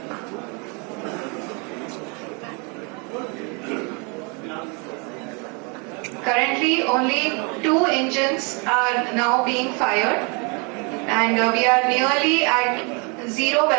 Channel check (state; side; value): quieter; left; 33.3 dB